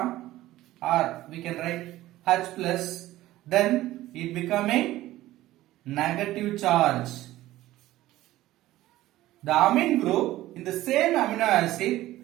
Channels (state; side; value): quieter; left; 15.8 dB